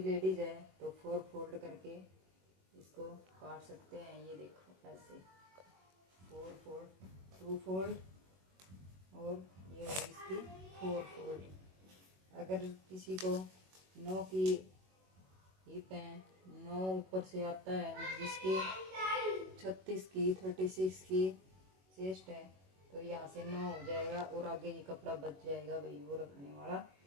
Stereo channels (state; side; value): late; left; 21 ms